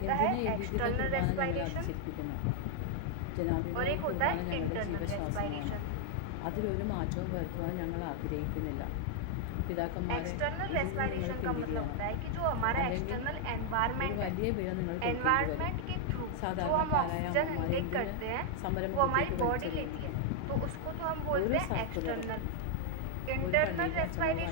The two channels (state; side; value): different; both; correlation 0.00